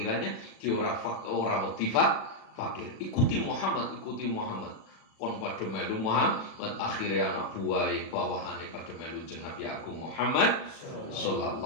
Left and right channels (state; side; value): late; right; 37 ms